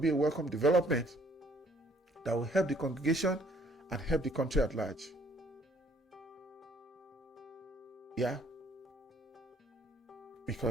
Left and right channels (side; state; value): both; normal; correlation 0.62